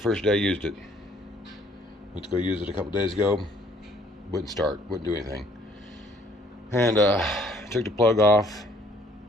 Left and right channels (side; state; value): both; normal; correlation 0.61